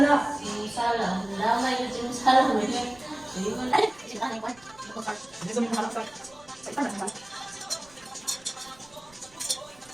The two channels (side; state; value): right; noise; rumble, 27 dB below the sound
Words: na. Si Musala. Nadamay yun si Musala. Hindi mo na.